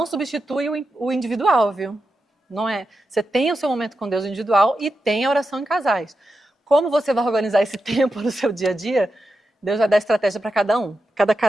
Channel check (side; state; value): both; normal; correlation 0.88